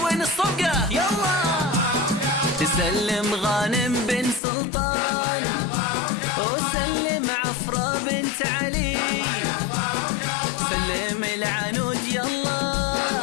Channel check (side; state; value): right; drops out; at 4.4 s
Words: الصفقة يلا. تسلم غانم بن سلطان وسلم عفرة بنت علي. سلم العنود يلا